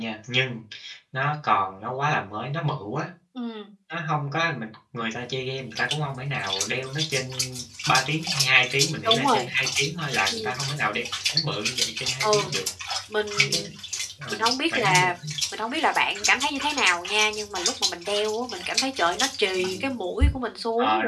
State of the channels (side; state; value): both; identical; correlation 1.00